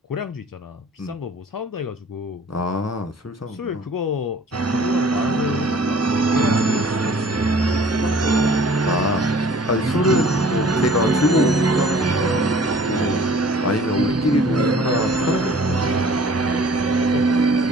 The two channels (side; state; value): both; normal; correlation 0.50